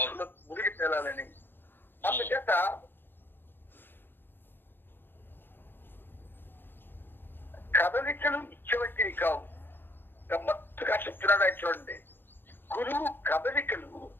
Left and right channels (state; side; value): late; right; 0.099 ms